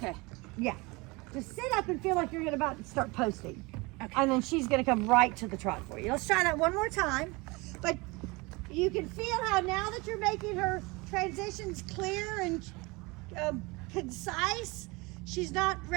Yeah. Just sit up and feel like you're about to start posting. Okay. And then she's going to come right to the trot for you. Let's try that one more time. But you can feel how now that you're making her transitions clear and concise, she's not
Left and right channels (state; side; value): quieter; left; 25.2 dB